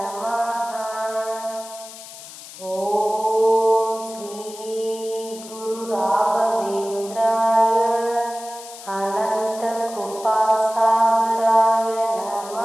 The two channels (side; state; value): left; noise; hiss, 15 dB below the sound